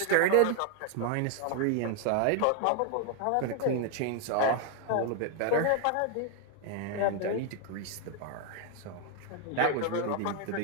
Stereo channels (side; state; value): both; different; correlation 0.00